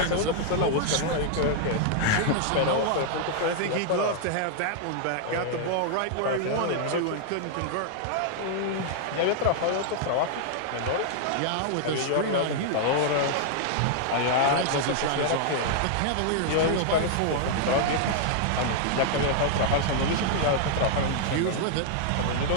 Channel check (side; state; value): both; different; correlation -0.01